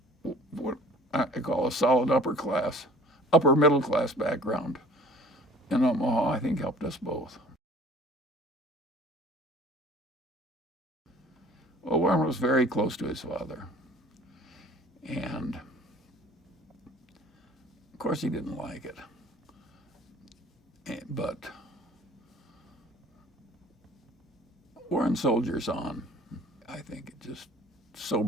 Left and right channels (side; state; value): both; normal; correlation 0.49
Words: what I call a solid upper middle class background in Omaha, I think helped us both. Well, Warren was very close to his father. And of course he didn't like it. But Warren soldiers on. I think it just